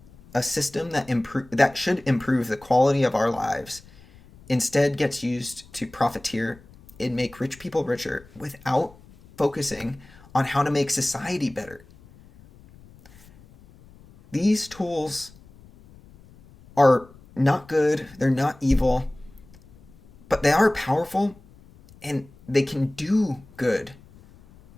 a system that should improve the quality of our lives instead gets used to profiteer and make rich people richer without focusing on how to make society better. These tools are not good, they're not evil, but they are powerful and they can do good.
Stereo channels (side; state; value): left; noise; rumble, 24 dB below the sound